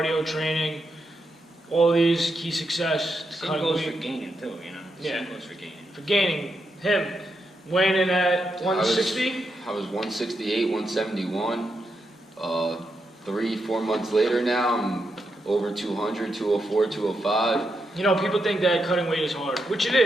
training, all these key success. Same goes for gaining too, you know? Yeah. Same goes for gaining. For gaining, Weighing in at 160? I was 168, 171. 3-4 months later now, I'm over 200, 204, 205. You know, people think that cutting weight is hard, which it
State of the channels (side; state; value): both; normal; correlation 0.84